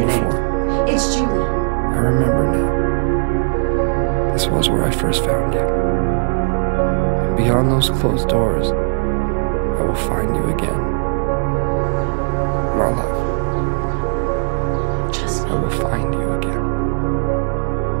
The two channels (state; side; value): silent; left; digital silence